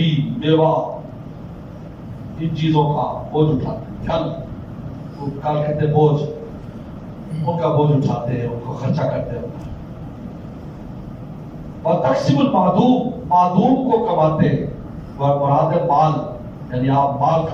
بیوہ ان چیزوں کا بوجھ اٹھاتے ہیں. کل کہتے ہیں بوجھ, ان کا بوجھ اٹھاتے ہیں, ان کو خرچہ کرتے ہیں. وتقسم المعدوم, معدوم کو کماتے ہیں, مراد مال, یعنی آپ مال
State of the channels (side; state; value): both; identical; correlation 1.00